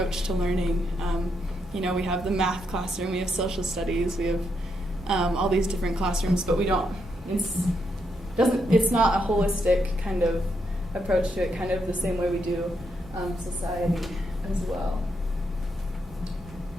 to learning. We have the math classroom, we have social studies, we have all these different classrooms, but we don't, it's not a holistic kind of approach to it, kind of the same way we do society as well.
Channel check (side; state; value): both; normal; correlation 0.79